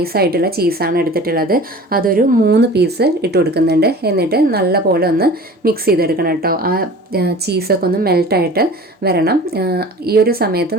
ആയിട്ടുള്ള ചീസാണ് എടുത്തിട്ടുള്ളത്. അതൊരു 3 പീസ് ഇട്ട് കൊടുക്കുന്നുണ്ട്. എന്നിട്ട് നല്ല പോലെ ഒന്ന് മിക്സ് ചെയ്തെടുക്കണം കേട്ടോ. ആ ചീസൊക്കെ ഒന്ന് മെൽട്ടായിട്ട് വരണം. ഈ ഒരു സമയത്ത്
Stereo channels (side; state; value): both; normal; correlation 0.41